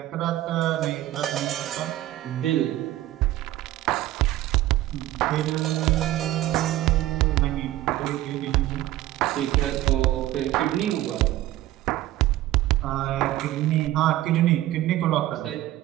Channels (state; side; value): quieter; left; 14.9 dB